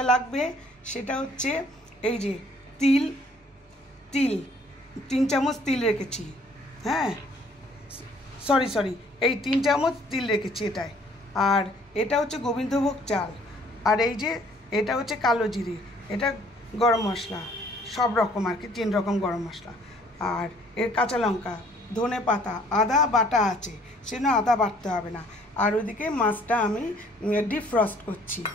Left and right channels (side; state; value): both; normal; correlation 0.59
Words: লাগবে সেটা হচ্ছে এই যে তিল 3 চামচ তিল রেখেছি। হ্যাঁ, সরি এই 3 চামচ তিল রেখেছি এটাই। আর এটা হচ্ছে গোবিন্দভোগ চাল। আর এই যে এটা হচ্ছে কালো জিরে, এটা গরম মশলা, সব রকম আর কি 3 রকম গরম মশলা। আর এর কাঁচা লঙ্কা, ধনে পাতা, আদা বাটা আছে, সেজন্য আদা বাটতে হবে না। আর ওইদিকে মাছটা আমি ডিপ ফ্রস্ট করছি।